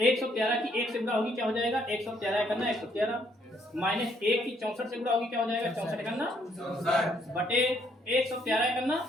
की 1 से गुणा होगी, क्या हो जाएगा? 113 करना 113 माइनस 1 की 64 से गुणा होगी, क्या हो जाएगा? 64 करना बटे 113 करना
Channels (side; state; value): both; normal; correlation 0.69